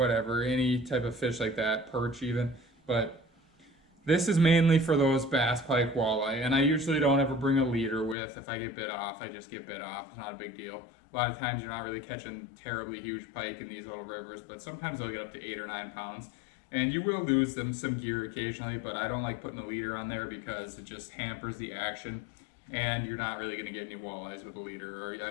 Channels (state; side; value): drops out; right; at 8.2 s